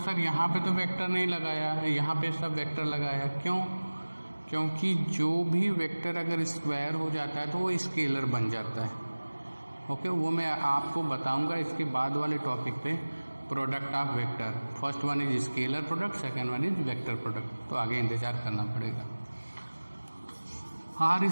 यहाँ पे तो वेक्टर नहीं लगाया है, यहाँ पे सब वेक्टर लगाया, क्यों? क्योंकि जो भी वेक्टर अगर स्क्वायर हो जाता है तो वो स्केलर बन जाता है। ओके, वो मैं आपको बताऊंगा इसके बाद वाले टॉपिक पे, product of vector. First one is scalar product, second one is vector product, तो आगे इंतजार करना पड़ेगा। R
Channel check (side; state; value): both; inverted; correlation -1.00